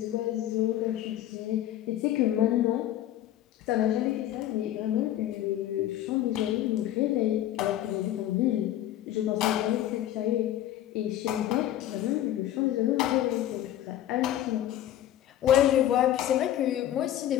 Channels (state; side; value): quieter; right; 12.6 dB